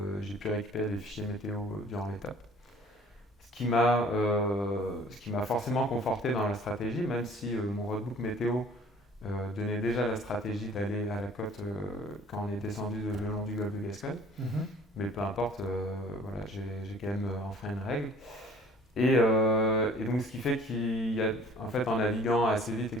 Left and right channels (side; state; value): both; normal; correlation 0.52